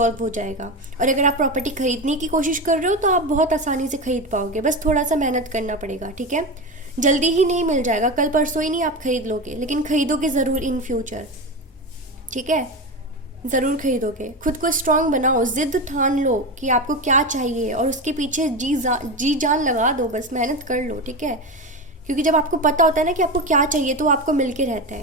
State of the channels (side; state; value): both; normal; correlation 0.20